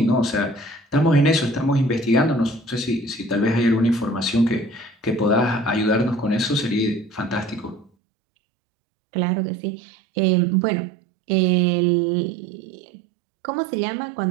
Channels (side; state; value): left; drops out; at 7.9 s